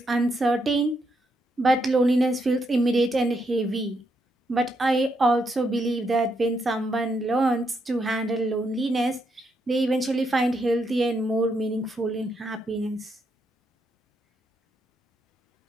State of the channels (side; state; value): both; normal; correlation 0.78